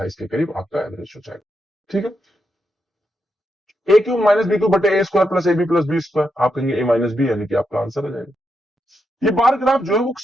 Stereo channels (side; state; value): both; normal; correlation 0.83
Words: के करीब आपका एवरेज हो जाएगा, ठीक है। A cube minus B cube बटे A square plus A B plus B square, आप कहेंगे ए माइनस बी, यानी कि आपका आंसर आ जाएगा। ये बार ग्राफ जो है वो